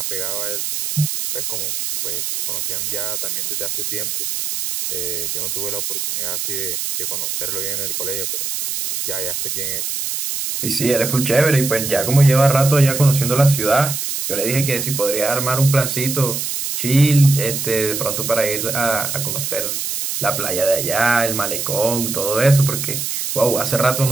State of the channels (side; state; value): right; noise; hiss, 3 dB below the sound